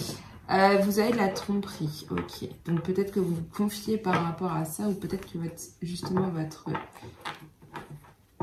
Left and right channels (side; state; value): both; identical; correlation 1.00